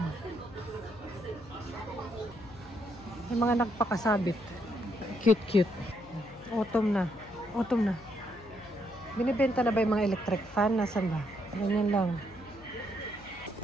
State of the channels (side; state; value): left; noise; hum, 20 dB below the sound